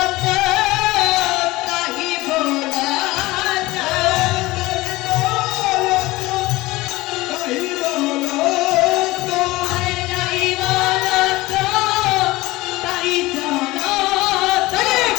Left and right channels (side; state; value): right; quieter; 19.7 dB